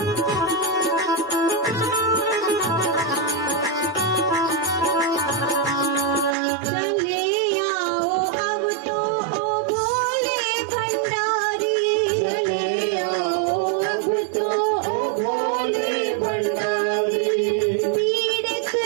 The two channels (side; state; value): left; drops out; at 6.4 s